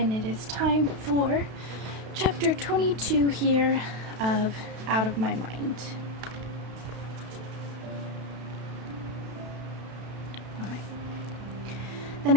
it is time for chapter 22 here of Out of My Mind. Alright. The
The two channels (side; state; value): left; late; 32 ms